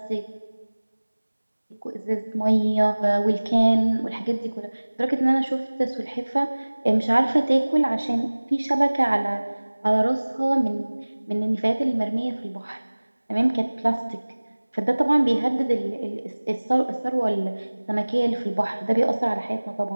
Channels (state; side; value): inverted; both; correlation -1.00